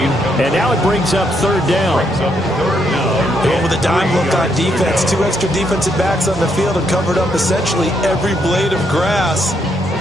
and now it brings up 3rd down. And with a dime look on defense, 2 extra defensive backs on the field and covered up essentially every blade of grass.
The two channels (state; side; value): normal; both; correlation 0.75